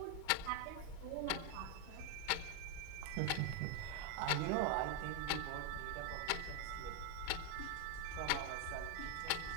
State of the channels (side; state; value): both; different; correlation 0.00